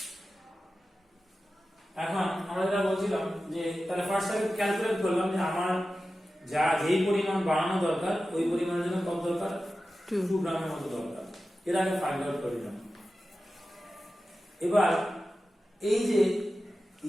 এখন আমরা যেটা বলছিলাম যে তাহলে ফার্স্ট আমি ক্যালকুলেট করলাম যে আমার যেই পরিমাণ বানানো দরকার ওই পরিমাণের জন্য কত দরকার, 2 গ্রামের মতো দরকার। এর আগে ফাইন্ড আউট করে নিলাম। এবার এই যে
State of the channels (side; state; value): both; normal; correlation 0.94